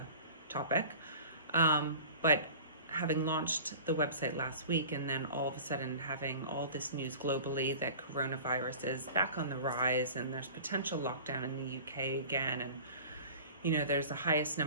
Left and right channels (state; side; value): inverted; both; correlation -0.40